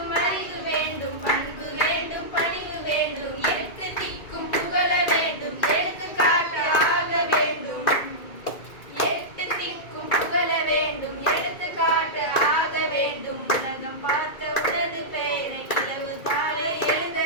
அறிவு வேண்டும், பண்பு வேண்டும், பணிவு வேண்டும். எட்டு திக்கும் புகழ வேண்டும், எடுத்துக்காட்டு ஆக வேண்டும். எட்டு திக்கும் புகழ வேண்டும், எடுத்துக்காட்டு ஆக வேண்டும். உலகம் பார்த்த உனது பெயரை நிலவு தாழ எழுத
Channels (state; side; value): late; right; 2.3 ms